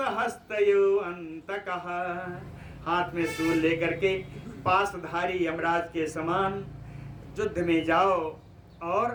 अंतकः, हाथ में शूल लेकर के पासधारी यमराज के समान युद्ध में जाओ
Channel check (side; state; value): both; identical; correlation 1.00